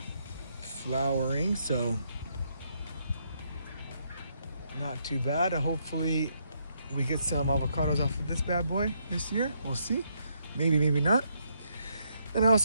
flowering, so not too bad. Hopefully we get some avocados off of this bad boy this year. We'll see. Maybe, maybe not. And I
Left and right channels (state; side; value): inverted; both; correlation -0.75